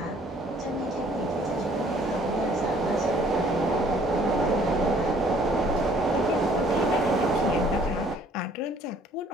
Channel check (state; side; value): normal; both; correlation 0.59